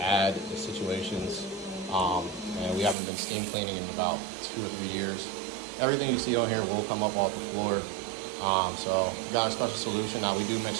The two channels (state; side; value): drops out; left; at 3.0 s